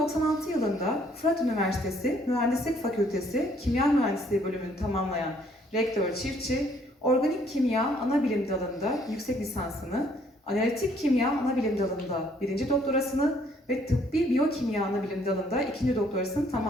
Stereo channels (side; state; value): both; normal; correlation 0.64